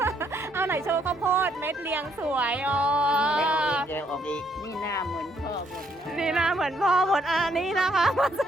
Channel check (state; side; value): normal; both; correlation 0.70